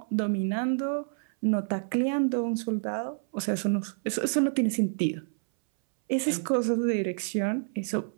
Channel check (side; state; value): left; silent; 59 dB below the other